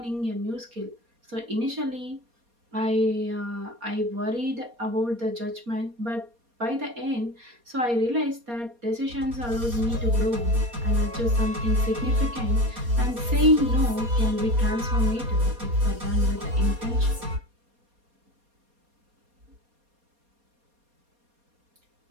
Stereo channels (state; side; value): late; left; 4.2 ms